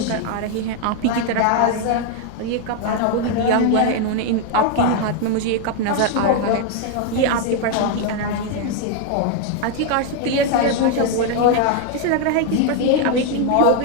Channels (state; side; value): different; both; correlation 0.00